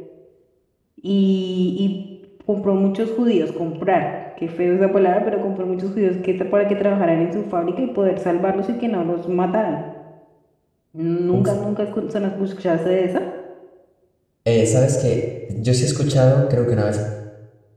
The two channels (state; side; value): identical; both; correlation 1.00